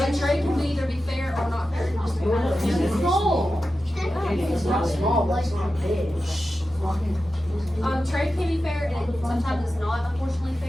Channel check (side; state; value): both; normal; correlation 0.92